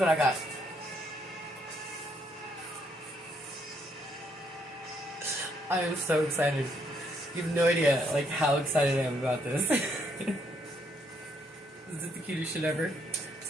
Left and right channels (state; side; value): normal; both; correlation 0.72